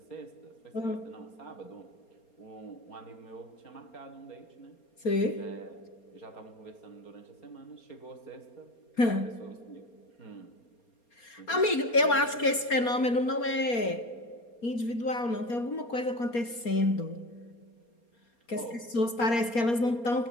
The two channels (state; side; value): late; right; 4.3 ms